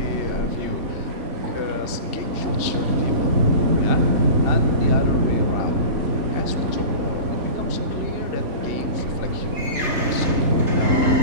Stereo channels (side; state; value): left; late; 3.4 ms